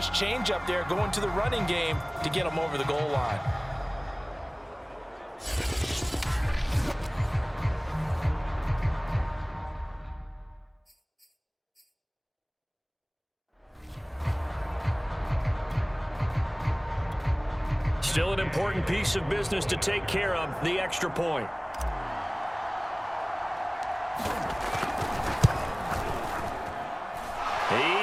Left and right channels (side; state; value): both; identical; correlation 1.00